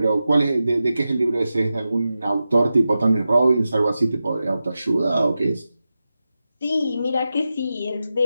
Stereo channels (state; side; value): inverted; both; correlation -0.92